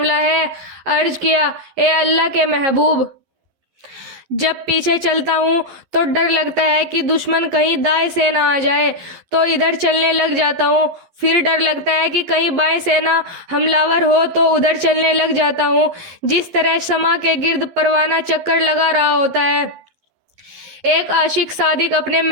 ہے؟ عرض کیا، اے اللہ کے محبوب، جب پیچھے چلتا ہوں تو ڈر لگتا ہے کہ دشمن کہیں دائیں سے نہ آ جائے تو ادھر چلنے لگ جاتا ہوں، پھر ڈر لگتا ہے کہ کہیں بائیں سے نہ حملہ ہو تو ادھر چلنے لگ جاتا ہوں، جس طرح شمع کے گرد پروانہ چکر لگا رہا ہوتا ہے۔ ایک عاشق صادق اپنے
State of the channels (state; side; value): late; left; 11 ms